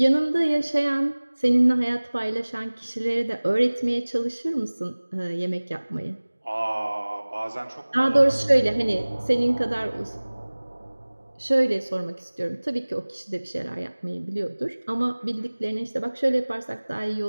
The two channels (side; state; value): both; inverted; correlation -1.00